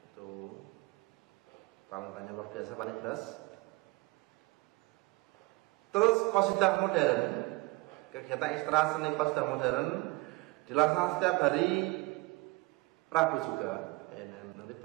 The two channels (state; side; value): quieter; left; 23.9 dB